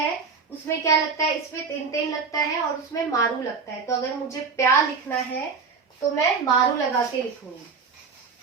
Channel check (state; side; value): quieter; left; 5.2 dB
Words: उसमें क्या लगता है, इसमें तेन तेन लगता है और उसमें मारू लगता है। तो अगर मुझे प्या लिखना है तो मैं मारू लगा के लिखूंगी।